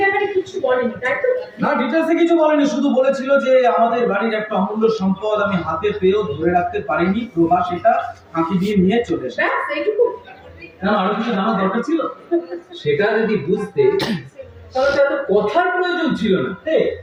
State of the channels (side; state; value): both; identical; correlation 1.00